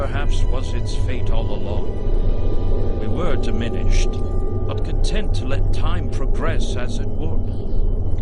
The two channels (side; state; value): both; identical; correlation 1.00